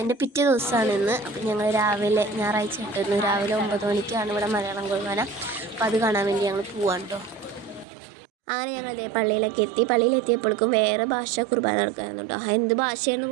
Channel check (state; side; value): drops out; left; at 7.9 s